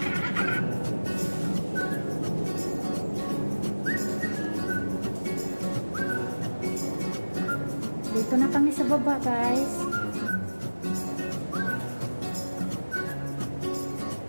Dito na kami sa baba, guys.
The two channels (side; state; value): both; inverted; correlation -1.00